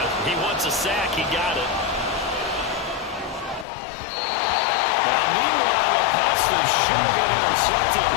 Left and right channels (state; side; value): drops out; right; at 3.7 s